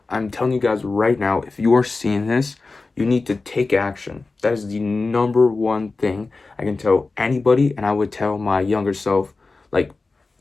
I'm telling you guys right now, if you are seeing this, you need to take action. That is the number one thing I can tell anybody, and I would tell my younger self like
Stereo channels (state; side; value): quieter; right; 3.7 dB